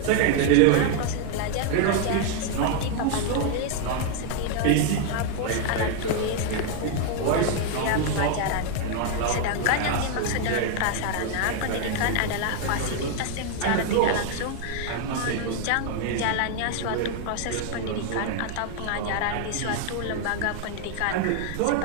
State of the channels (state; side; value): different; both; correlation 0.00